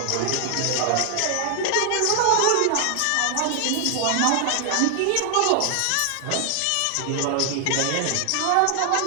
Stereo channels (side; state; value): both; different; correlation 0.00